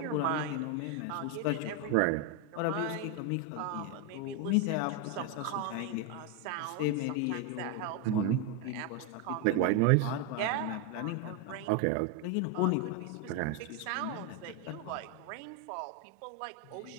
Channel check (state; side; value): different; both; correlation 0.02